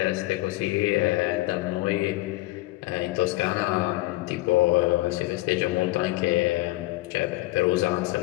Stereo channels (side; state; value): right; quieter; 19.4 dB